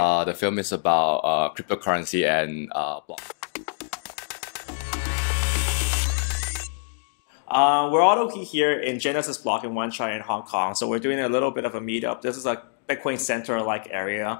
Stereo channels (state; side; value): silent; right; digital silence